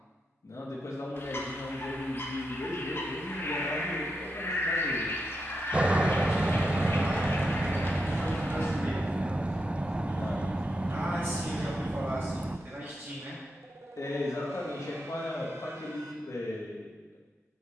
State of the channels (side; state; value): both; normal; correlation 0.85